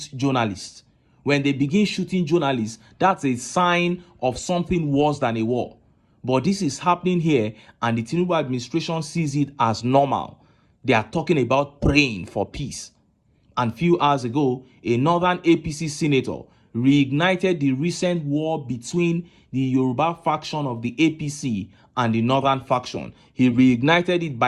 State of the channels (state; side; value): identical; both; correlation 1.00